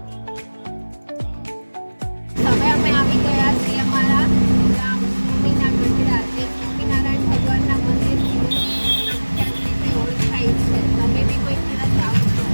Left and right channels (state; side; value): inverted; both; correlation -1.00